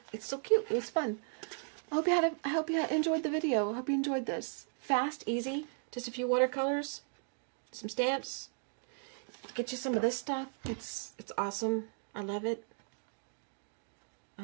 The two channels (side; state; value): left; silent; 54 dB below the other